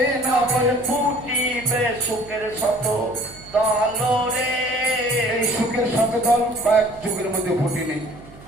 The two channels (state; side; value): noise; right; hum, 21 dB below the sound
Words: নবল ফুটিবে সুখের শত দল রে। এই সুখের শত দল কয়েক যুগের মধ্যে ফুটেনি।